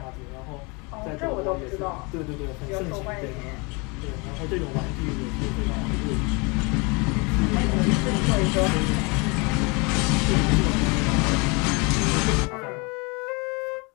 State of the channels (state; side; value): quieter; right; 29.3 dB